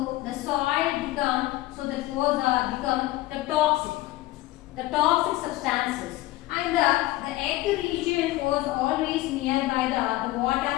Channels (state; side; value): quieter; right; 17.5 dB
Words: the soil become, so that was become the toxic substances, and the earth region was always nearby the